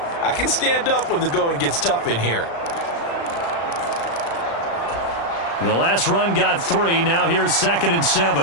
I can stand up when the going gets tough in here. The last run got 3. Now here's 2nd and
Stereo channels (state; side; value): late; right; 35 ms